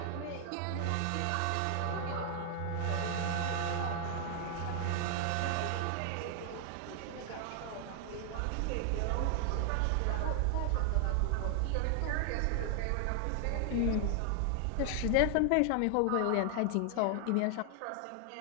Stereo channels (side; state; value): both; different; correlation 0.00